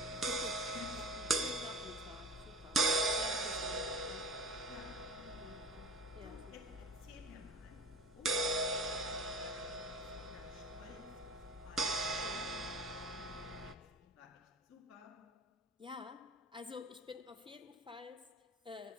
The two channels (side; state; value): both; normal; correlation 0.37